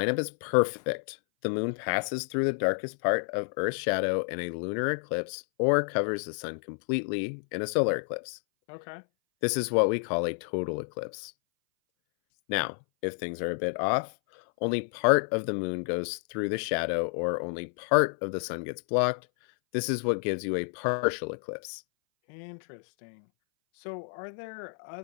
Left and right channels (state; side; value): silent; right; 58 dB below the other